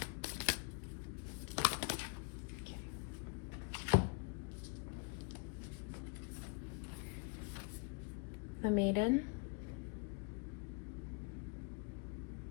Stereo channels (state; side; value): quieter; right; 32.2 dB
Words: Okay. The Maiden.